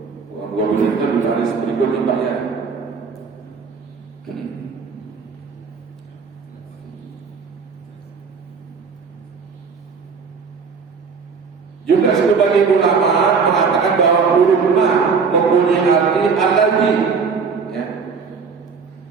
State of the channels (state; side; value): quieter; left; 5.4 dB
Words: Gobilu itu di baris berikutnya Pak, ya. Juga sebagian ulama mengatakan bahwa huruf ma mempunyai arti alladzi, ya.